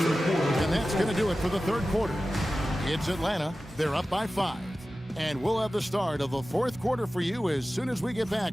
And that's going to do it for the third quarter. It's Atlanta. They're up by 5. And we'll have the start of the fourth quarter for you as soon as we get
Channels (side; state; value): both; normal; correlation 0.95